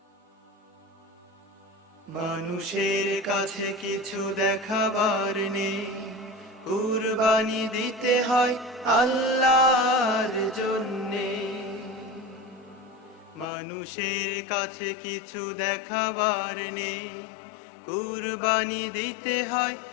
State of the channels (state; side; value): drops out; right; at 13.5 s